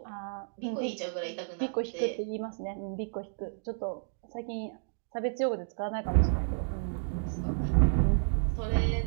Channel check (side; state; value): left; silent; digital silence